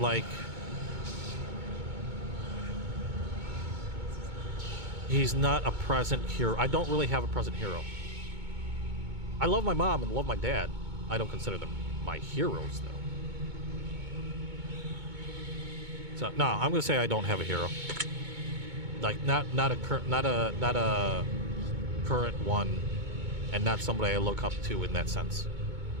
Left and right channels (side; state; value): left; late; 2.2 ms